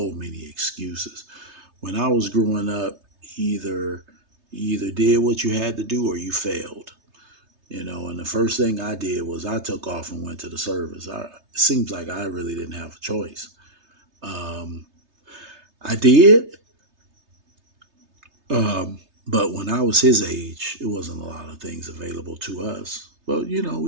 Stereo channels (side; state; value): left; late; 3.3 ms